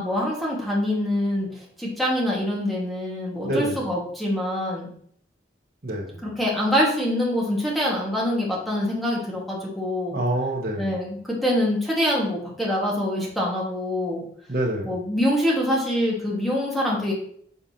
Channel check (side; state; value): both; normal; correlation 0.59